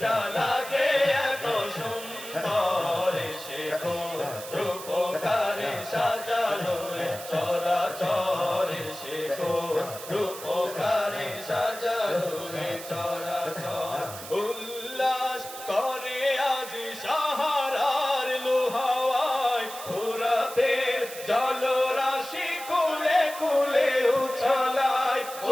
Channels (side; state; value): right; noise; hiss, 12 dB below the sound